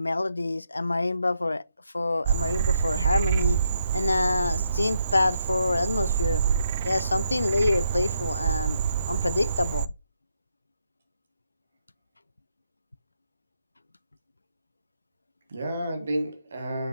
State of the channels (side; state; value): both; inverted; correlation -0.78